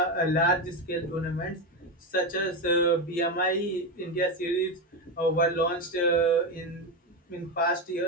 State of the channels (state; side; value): normal; both; correlation 0.13